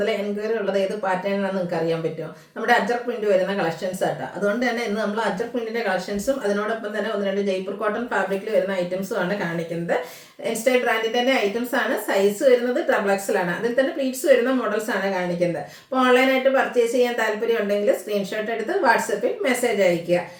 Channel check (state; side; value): identical; both; correlation 1.00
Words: എൻക്വയറി ഉള്ളത് ഏത് പാറ്റേൺ ആണെന്ന് നിങ്ങൾക്ക് അറിയാൻ പറ്റുമോ? നമ്മുടെ അജർ പ്രിന്റ് വരുന്ന കളക്ഷൻസ് ആട്ടോ. അതുകൊണ്ട് തന്നെ ഇന്ന് നമ്മൾ അജർ പ്രിന്റിന്റെ കളക്ഷൻസും അതിനോടൊപ്പം തന്നെ ഒന്ന് രണ്ട് ജയ്പൂർ കോട്ടൺ ഫാബ്രിക്കിൽ വരുന്ന ഐറ്റംസും ആണ് കാണിക്കുന്നത്. ഇൻസ്റ്റൈൽ ബ്രാൻഡിന്റെ തന്നെ ഐറ്റംസ് ആണ്. സൈസ് വരുന്നത് XXL ആണ്. അതിൽ തന്നെ പ്ലീറ്റ്സ് വരുന്ന മോഡൽസ് ആണ് കാണിക്കുന്നത്. അപ്പോൾ ഓൺലൈനായിട്ട് പർച്ചേസ് ചെയ്യാൻ താല്പര്യം ഉണ്ടെങ്കിൽ സ്ക്രീൻഷോട്ട് എടുത്ത് വാട്സപ്പിൽ മെസ്സേജ് അയയ്ക്കുക.